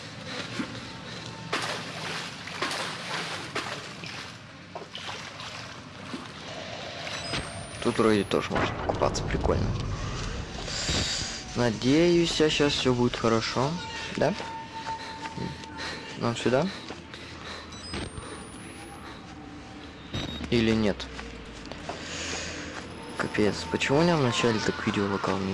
Тут вроде тоже можно купаться, прикольно. Надеюсь, сейчас все будет хорошо. Да? Нам сюда? Или нет? Капец, почему у меня вначале так видео локал,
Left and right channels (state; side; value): identical; both; correlation 1.00